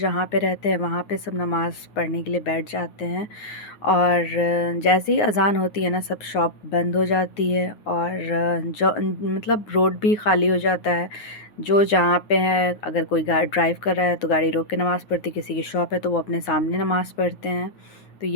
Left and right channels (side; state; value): right; late; 9.6 ms